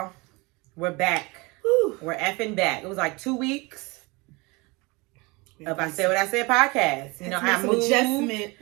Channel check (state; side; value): quieter; left; 25.6 dB